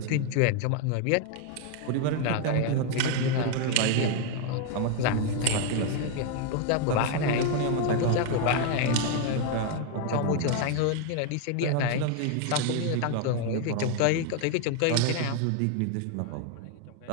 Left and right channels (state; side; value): different; both; correlation 0.01